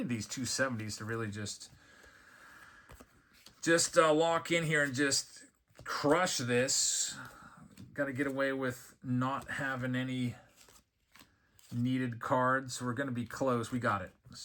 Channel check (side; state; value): both; identical; correlation 1.00